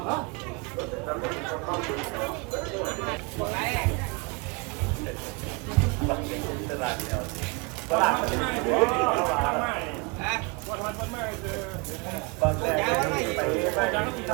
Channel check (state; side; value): quieter; left; 30.1 dB